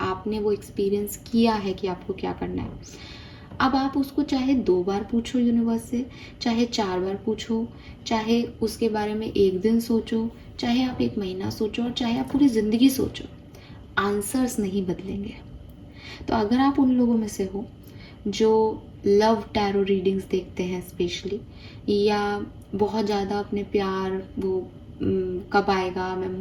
आपने वो एक्सपीरियंस किया है कि आपको क्या करना है। अब आप उसको चाहे 2 बार पूछो यूनिवर्स से, चाहे 4 बार पूछो, चाहे उसके बारे में 1 दिन सोचो, चाहे आप 1 महीना सोचो, और चाहे आप पूरी ज़िंदगी सोचो, आंसर्स नहीं बदलेंगे। तो अगर आप उन लोगों में से हो जो लव टैरो रीडिंग्स देखते हैं स्पेशली, या बहुत ज़्यादा अपने प्यार वो कब आएगा, मैं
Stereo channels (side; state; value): both; identical; correlation 1.00